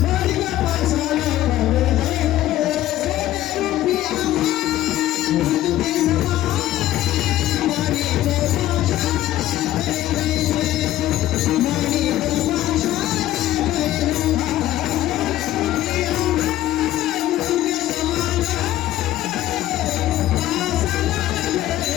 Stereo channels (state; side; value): quieter; right; 14.1 dB